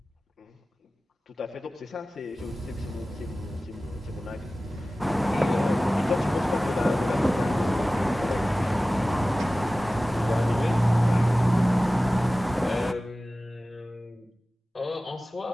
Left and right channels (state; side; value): normal; both; correlation 0.97